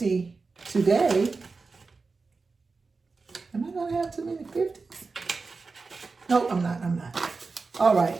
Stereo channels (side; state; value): left; quieter; 4.2 dB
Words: today. Am I going to have too many 50s? No, I'm not. All